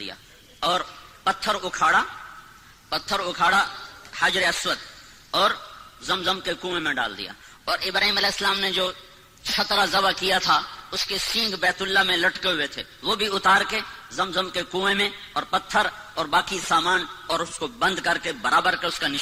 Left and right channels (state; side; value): identical; both; correlation 1.00